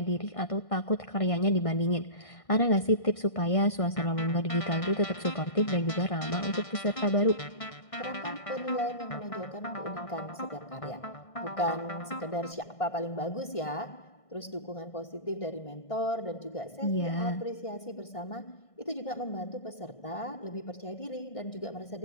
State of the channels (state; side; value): late; right; 1.6 ms